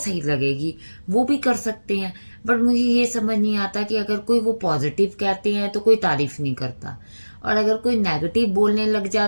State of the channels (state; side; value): inverted; both; correlation -1.00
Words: लगेगी वो भी कर सकते हैं। बट मुझे ये समझ नहीं आता कि अगर कोई वो पॉजिटिव कहते हैं तो कोई तारीफ नहीं करता, और अगर कोई नेगेटिव बोलने लग